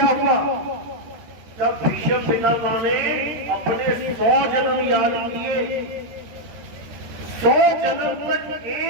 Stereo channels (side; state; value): left; late; 13 ms